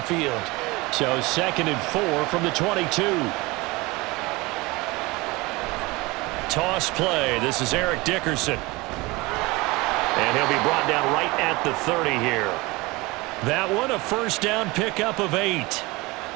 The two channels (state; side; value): quieter; left; 22.9 dB